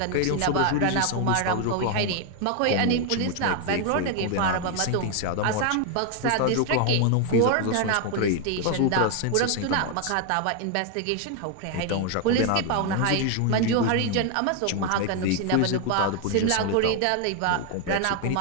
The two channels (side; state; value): both; different; correlation 0.01